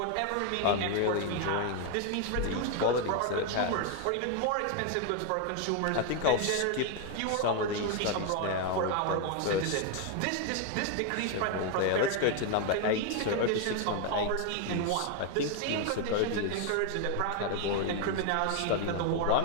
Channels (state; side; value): different; both; correlation 0.01